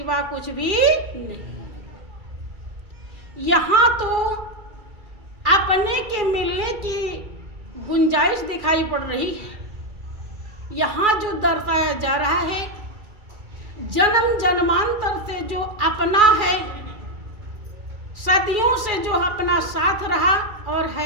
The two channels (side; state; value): left; late; 2.4 ms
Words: कुछ भी नहीं। यहाँ तो अपने के मिलने की गुंजाइश दिखाई पड़ रही है। यहाँ जो दर्शाया जा रहा है, जन्म जन्मांतर से जो अपना है, सदियों से जो अपना साथ रहा और